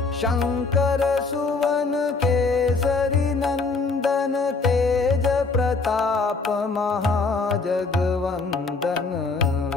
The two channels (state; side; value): quieter; right; 4.1 dB